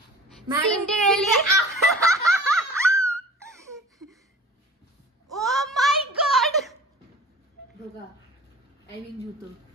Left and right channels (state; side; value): normal; both; correlation 0.44